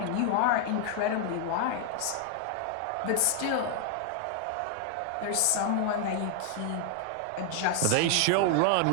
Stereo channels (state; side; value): different; both; correlation 0.00